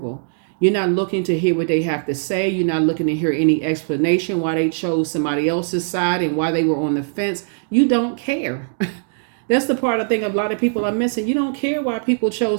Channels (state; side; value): silent; left; digital silence